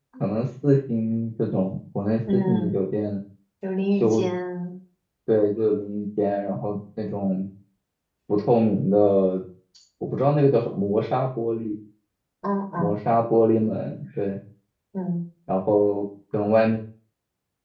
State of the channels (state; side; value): identical; both; correlation 1.00